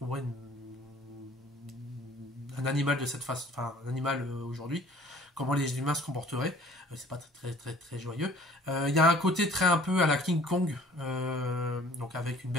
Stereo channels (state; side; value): normal; both; correlation 0.52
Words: un animal de cette façon, enfin un animal aujourd'hui, comment les humains se comporteraient. C'est pas très joyeux. Il y a un côté très un peu à la King Kong, donc avec une